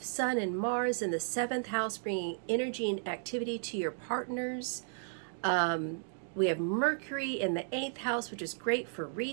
Sun and Mars in the 7th house, bringing energy and activity to your partners. We have Mercury in the 8th house, which is great for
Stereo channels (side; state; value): left; silent; digital silence